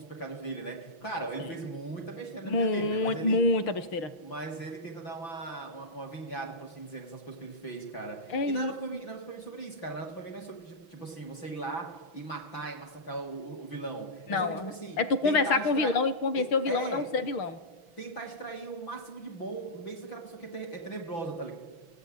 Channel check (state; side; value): late; right; 6.0 ms